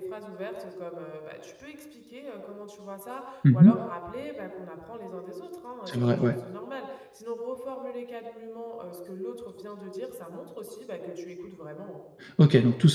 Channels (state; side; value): identical; both; correlation 1.00